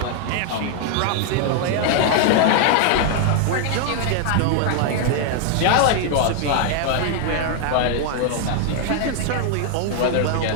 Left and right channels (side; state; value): both; different; correlation 0.00